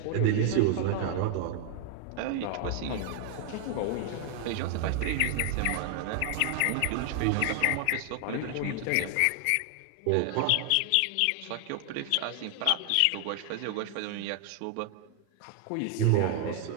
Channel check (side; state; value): both; different; correlation 0.00